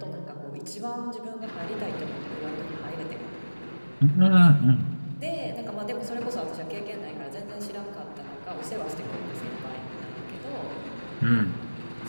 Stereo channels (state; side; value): inverted; both; correlation -1.00